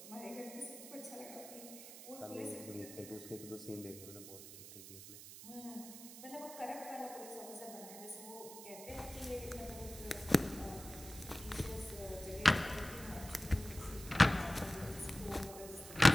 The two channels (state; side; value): noise; right; hiss, 13 dB below the sound